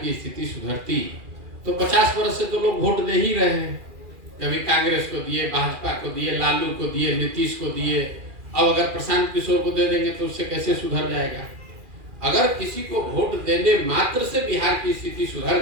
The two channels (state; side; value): late; left; 2.4 ms